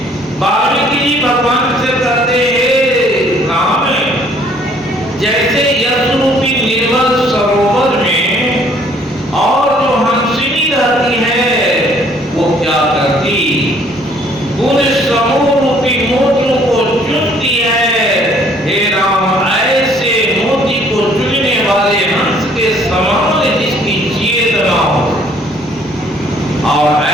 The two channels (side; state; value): both; normal; correlation 0.60